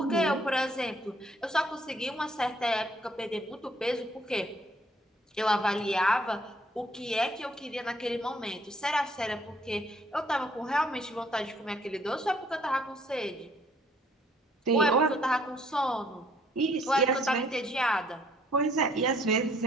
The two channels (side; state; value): both; normal; correlation 0.63